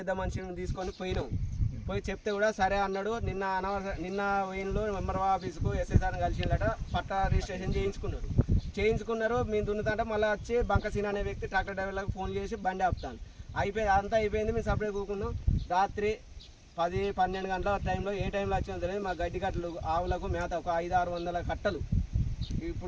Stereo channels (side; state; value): both; identical; correlation 1.00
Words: మనిషిని తీసుకొని పోయి చెప్తే కూడా సరే అన్నాడు. నిన్న వెయిన్లో ఎంఆర్ఓ ఆఫీసుకు ఎస్ఐసార్ని కలిసిందట. పట్టా రిజిస్ట్రేషన్ చేయించుకున్నారు. మేము దున్నుతుంటే మళ్ళీ వచ్చి బంకసీన అనే వ్యక్తి ట్రాక్టర్ డ్రైవర్లకు ఫోన్ చేసి బండి ఆపుతాను. అంతా అయిపోయింది. మేము సపరేట్ కూకున్నాం. రాత్రి 10-12 గంటల టైంలో ఏ టైంలో వచ్చినా తెలియదు మా గడ్డి కట్టలు ఆవులకు మేత ఒక 500-600 కట్టలు